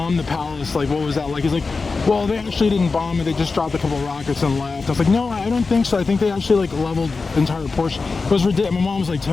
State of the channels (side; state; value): right; quieter; 4.2 dB